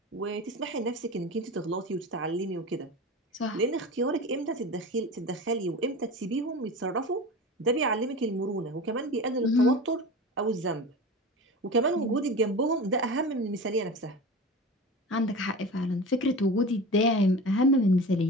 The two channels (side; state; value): both; normal; correlation 0.31